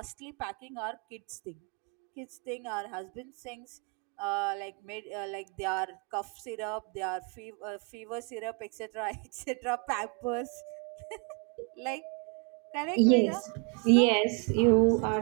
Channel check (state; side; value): quieter; left; 34.4 dB